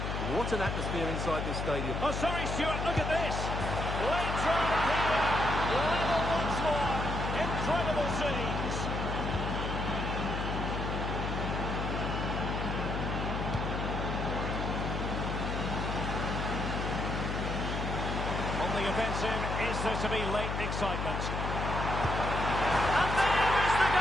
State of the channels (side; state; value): left; noise; hum, 2 dB below the sound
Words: What an atmosphere inside this stadium. Oh, sorry, Stuart, look at this. Late throw here. Level once more. Incredible scenes. On the offensive, is there to be late excitement? And there is the